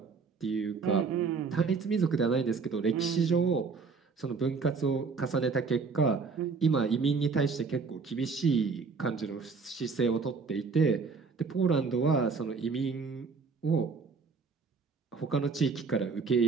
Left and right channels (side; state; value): left; quieter; 4.9 dB